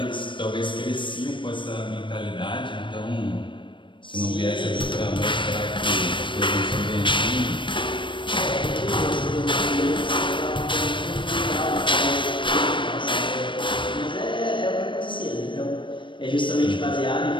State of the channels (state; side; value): late; right; 0.24 ms